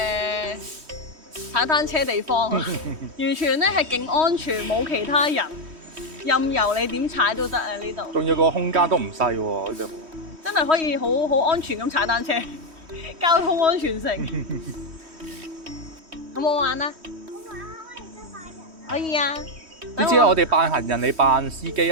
踩單車地方，完全咧係勁安全，冇其他人，任由你點踩都得啊！呢度仲有個空間都唔細喎，呢度。真係可以好安全咁踩單車，交通安全城。好唔好玩啊？可以啊！點知我哋扮行人，你扮司機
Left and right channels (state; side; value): late; left; 3.1 ms